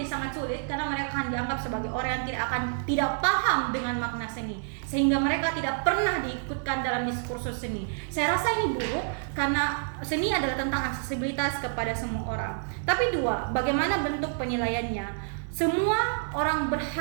sangat sulit karena mereka akan dianggap sebagai orang yang tidak paham dengan makna seni, sehingga mereka tidak pernah diikutkan dalam diskursus seni. Saya rasa ini buruk karena seni adalah tentang aksesibilitas kepada semua orang. Tapi 2, bagaimana bentuk penilaiannya? Semua orang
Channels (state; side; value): silent; left; digital silence